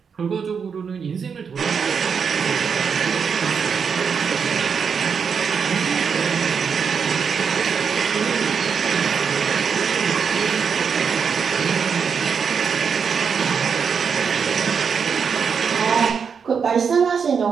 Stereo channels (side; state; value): left; quieter; 6.3 dB